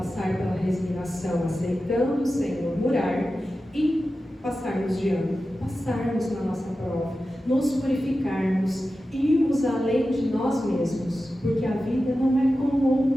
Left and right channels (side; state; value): both; normal; correlation 0.93